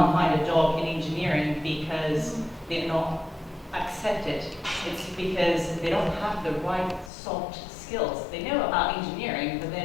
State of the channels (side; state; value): right; drops out; at 7.1 s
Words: find a job in engineering because they're not accepted. It's because they don't have the right soft skills. They know about engineering, but